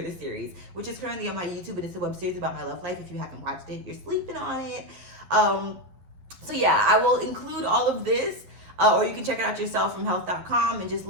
the Series, which is currently on my YouTube, and it's a web series about my love life. If you haven't watched it, you're sleeping on it. So yeah, I will include all of this. Or you can check it out yourself from health.com and just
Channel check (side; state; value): left; late; 11 ms